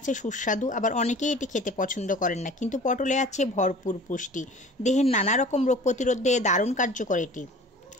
সুস্বাদু, আবার অনেকেই এটি খেতে পছন্দ করেন না, কিন্তু পটলে আছে ভরপুর পুষ্টি। দেহের নানা রকম রোগ প্রতিরোধে দারুণ কার্যকর এটি।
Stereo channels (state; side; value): normal; both; correlation 0.44